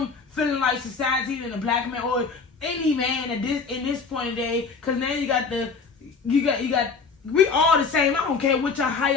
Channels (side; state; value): right; quieter; 4.9 dB